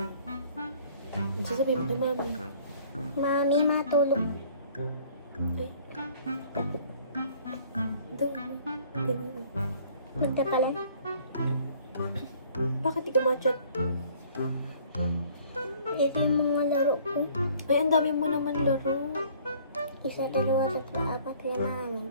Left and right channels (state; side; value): inverted; both; correlation -0.55